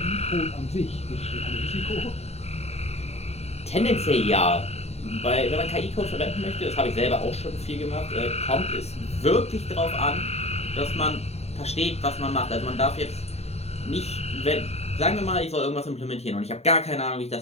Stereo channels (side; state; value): right; late; 0.31 ms